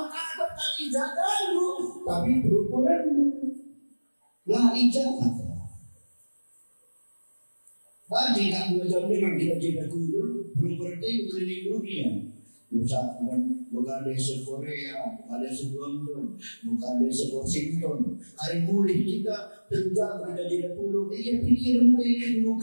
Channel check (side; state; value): both; inverted; correlation -1.00